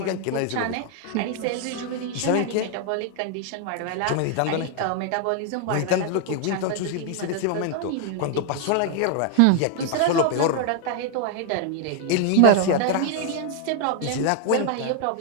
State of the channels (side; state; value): both; different; correlation 0.00